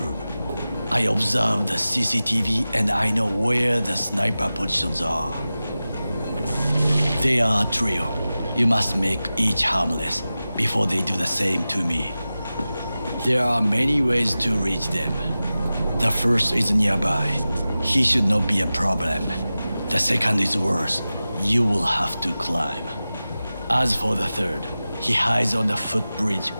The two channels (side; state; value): both; inverted; correlation -0.95